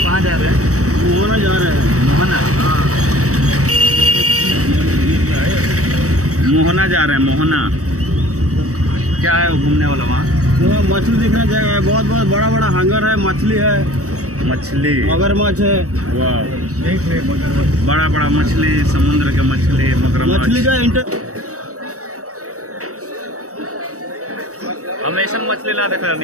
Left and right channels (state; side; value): late; left; 0.65 ms